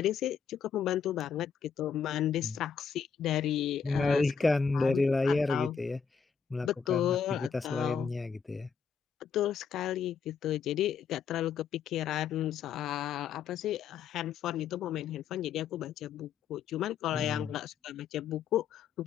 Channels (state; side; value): quieter; right; 6.6 dB